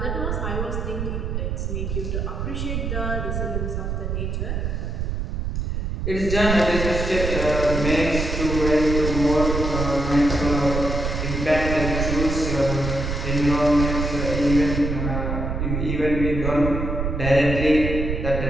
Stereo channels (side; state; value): right; noise; rumble, 2 dB below the sound